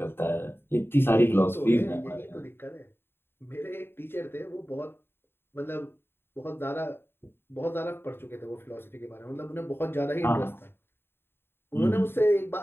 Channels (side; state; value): right; late; 0.11 ms